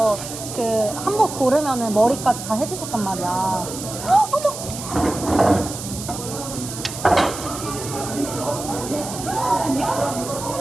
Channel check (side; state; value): right; noise; hiss, 9 dB below the sound